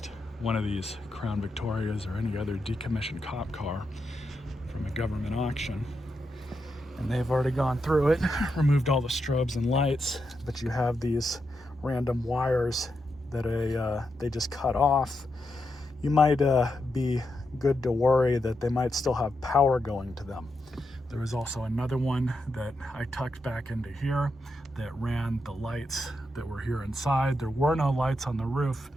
one of these Crown Victorias or any other decommissioned cop car from a government auction, and they've already gone through it, removed all the strobes and lights, but you have these random wires that they just cut off, you might be good to worry that they might still have power going to them. There was also another one that I tucked back into here that ran the lights that were here inside. There were no lights on the roof,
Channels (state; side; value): normal; both; correlation 0.84